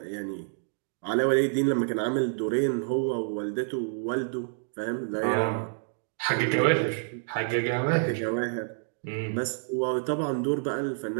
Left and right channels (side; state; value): left; silent; digital silence